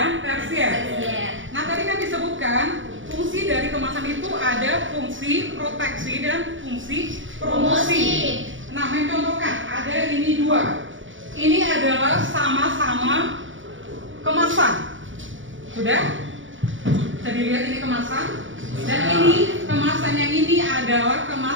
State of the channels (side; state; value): left; late; 0.56 ms